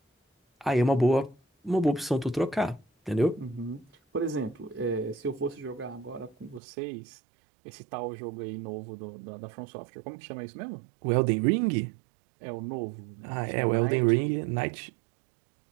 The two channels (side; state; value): left; drops out; at 6.6 s